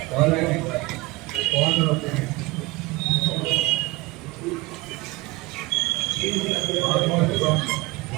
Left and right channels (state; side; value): quieter; left; 21.4 dB